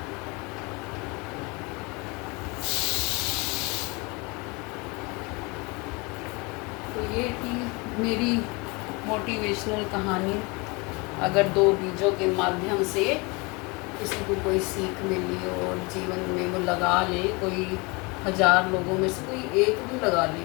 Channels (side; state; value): right; quieter; 27.5 dB